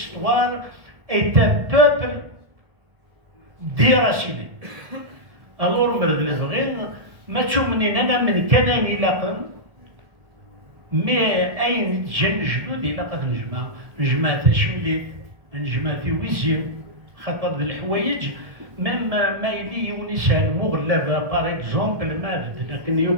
est un peuple déraciné. Alors مرد الفغين ما تشوفني انا من كان يلاقن مي اين جن جدود يلاقى نجمع تشملي نجمع في ويزيم خاطر الحوايج ميم ما يلي يونسان مغلبه باغ اكزومبل ما بدنا كن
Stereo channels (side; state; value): left; late; 1.4 ms